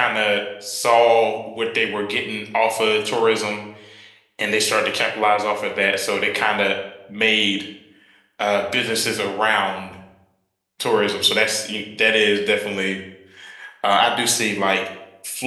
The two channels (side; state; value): both; identical; correlation 1.00